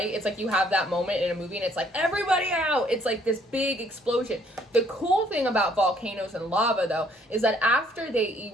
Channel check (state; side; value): normal; both; correlation 0.64